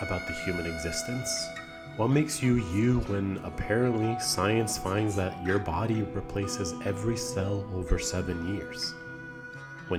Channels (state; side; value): identical; both; correlation 1.00